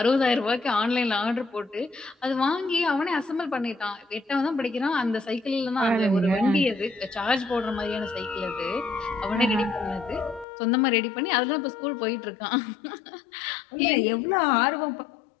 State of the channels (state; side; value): drops out; right; at 10.5 s